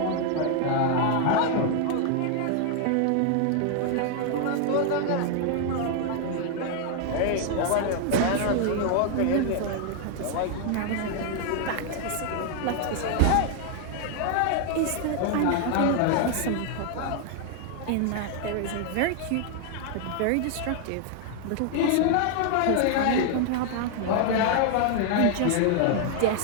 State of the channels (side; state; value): both; different; correlation 0.00